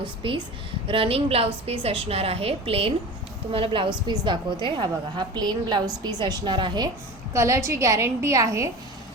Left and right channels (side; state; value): both; normal; correlation 0.33